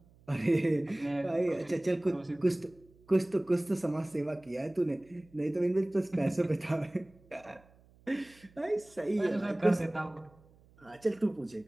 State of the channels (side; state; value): right; noise; hum, 28 dB below the sound